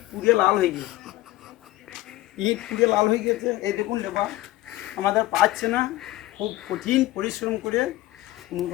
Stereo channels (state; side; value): quieter; right; 17.0 dB